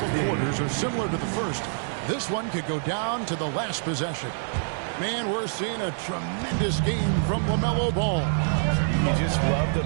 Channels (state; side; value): silent; left; digital silence